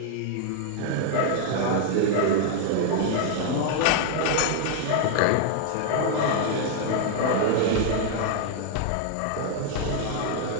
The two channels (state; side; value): different; both; correlation 0.00